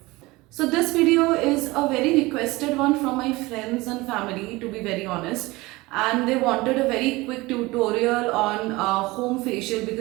So this video is a very requested one from my friends and family, to be very honest, and they wanted a very quick tutorial on home facial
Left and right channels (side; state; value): left; quieter; 21.4 dB